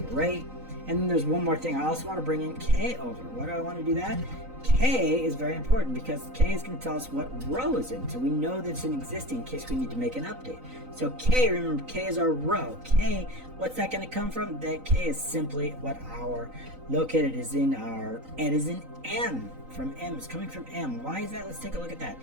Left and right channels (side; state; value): left; late; 3.9 ms